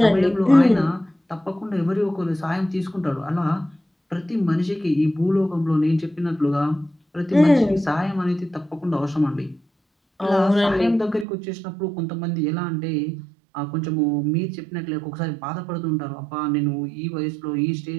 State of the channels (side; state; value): left; drops out; at 11.2 s